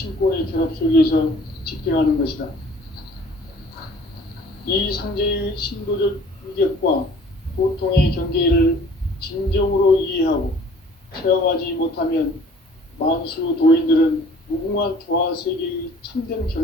결합 속에서 집행하는 것이다. 이 상제의 신도적 위격과 도통의 경계를 진정으로 이해하고 체험하지 못하면 만수 도인들은 무궁한 조화 세계의 참된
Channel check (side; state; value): both; normal; correlation 0.52